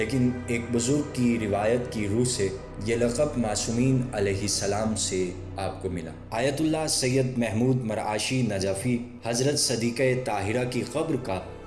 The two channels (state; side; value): identical; both; correlation 1.00